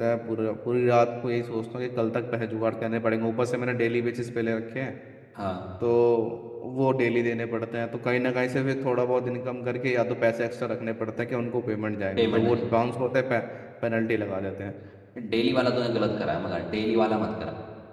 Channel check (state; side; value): identical; both; correlation 1.00